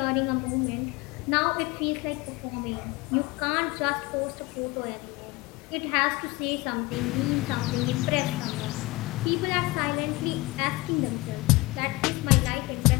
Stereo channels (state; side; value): quieter; right; 22.0 dB